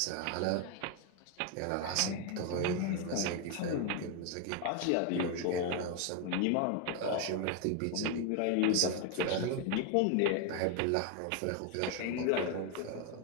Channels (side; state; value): both; different; correlation 0.01